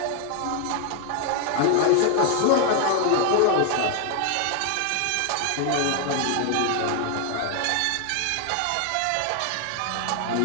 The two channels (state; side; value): different; both; correlation 0.00